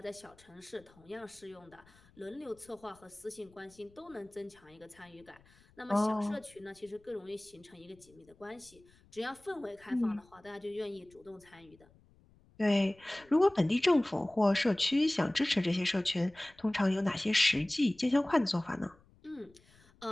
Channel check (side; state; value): left; noise; rumble, 28 dB below the sound